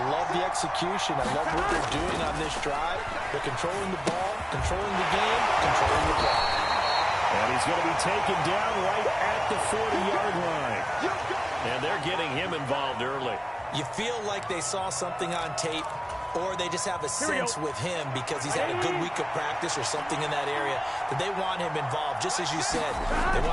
love the execution. I love what they're doing on this drive. They're controlling the ball, controlling the game, controlling the play. And he's going to be taken down right at the 40-yard line. And they're getting him involved early. You feel like they saw something on tape, or they just have a sense with him because he's had a good week of practice or something in that area that they want him involved. Just as you said, they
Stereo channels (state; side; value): identical; both; correlation 1.00